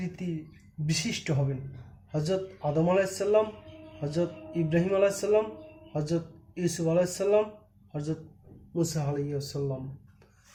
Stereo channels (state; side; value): identical; both; correlation 1.00